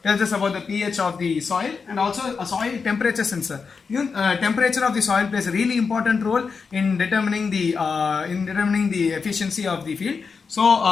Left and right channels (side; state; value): right; quieter; 5.2 dB